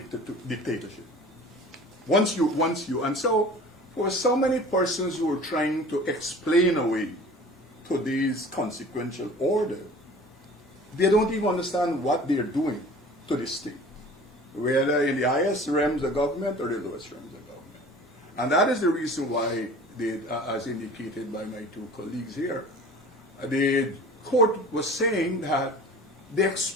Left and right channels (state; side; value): normal; both; correlation 0.43